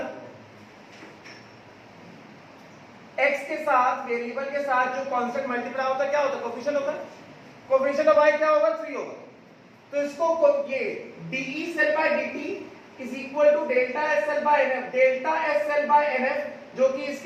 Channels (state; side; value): identical; both; correlation 1.00